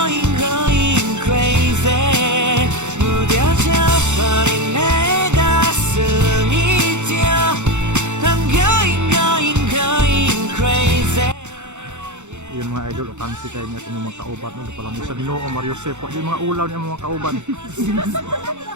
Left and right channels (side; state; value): left; late; 0.84 ms